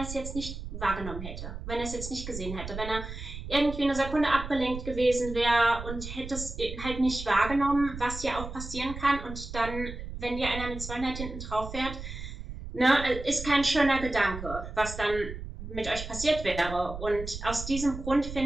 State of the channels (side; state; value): right; noise; rumble, 9 dB below the sound